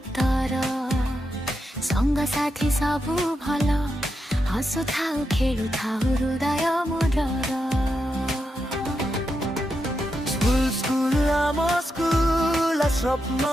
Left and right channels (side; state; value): both; normal; correlation 0.85